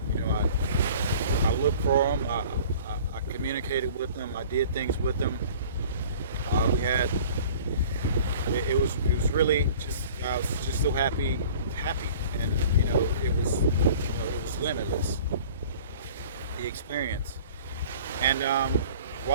I looked for them. I communicated with them. I did things with them. It was really just, I was just so happy, and it was limitless, the experience. And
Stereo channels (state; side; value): inverted; both; correlation -0.47